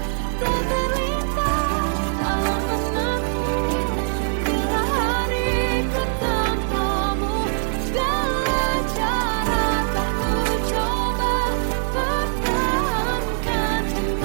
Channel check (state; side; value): silent; left; digital silence